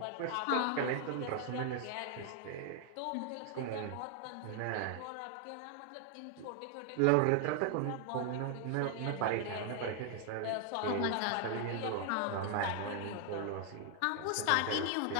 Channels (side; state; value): both; different; correlation 0.00